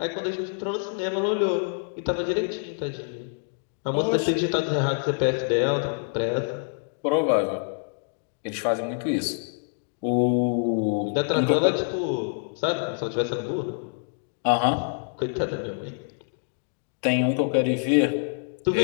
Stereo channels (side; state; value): right; silent; digital silence